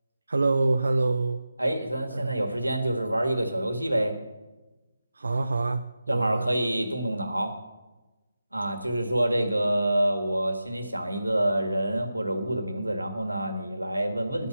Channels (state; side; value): inverted; both; correlation -0.92